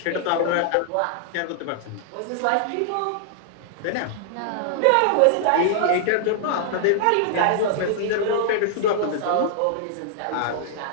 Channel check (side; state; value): both; different; correlation -0.01